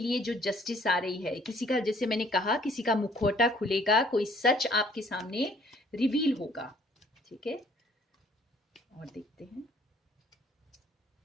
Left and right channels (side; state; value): both; normal; correlation 0.59